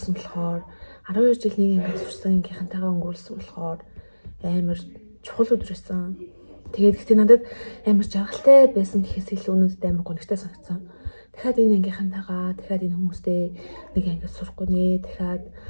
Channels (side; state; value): both; inverted; correlation -1.00